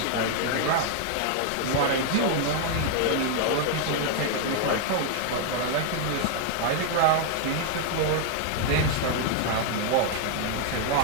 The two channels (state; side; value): different; both; correlation 0.00